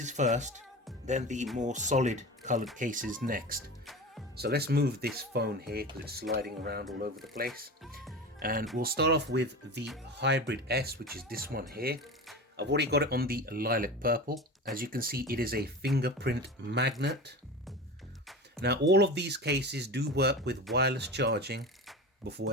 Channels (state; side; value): normal; both; correlation 0.30